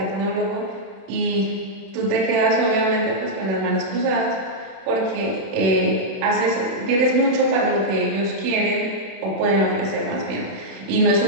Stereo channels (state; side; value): late; left; 31 ms